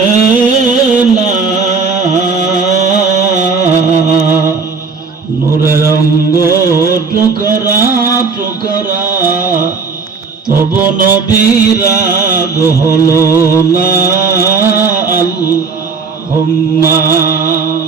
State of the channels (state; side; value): quieter; left; 4.9 dB